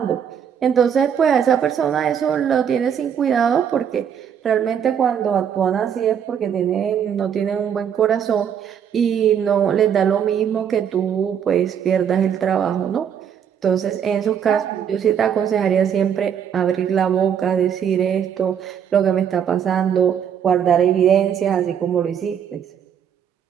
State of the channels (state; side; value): quieter; left; 8.3 dB